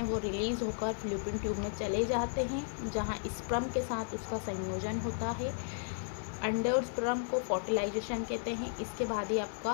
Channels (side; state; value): right; silent; 55 dB below the other